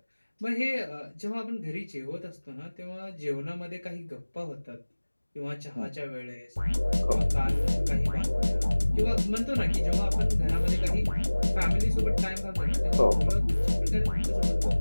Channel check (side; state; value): both; inverted; correlation -1.00